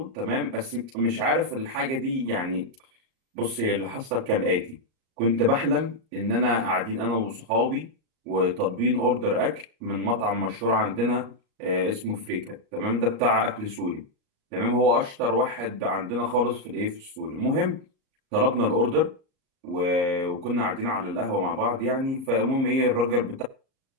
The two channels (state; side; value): late; left; 38 ms